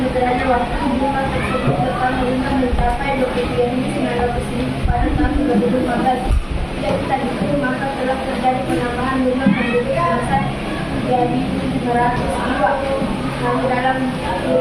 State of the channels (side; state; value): both; identical; correlation 1.00